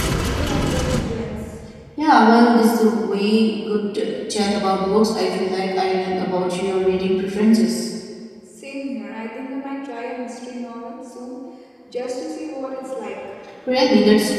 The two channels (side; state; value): both; identical; correlation 1.00